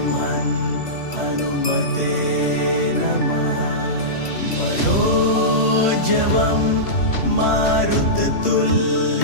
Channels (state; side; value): late; right; 3.1 ms